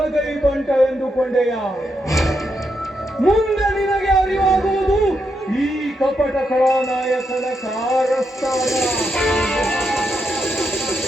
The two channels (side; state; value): both; normal; correlation 0.82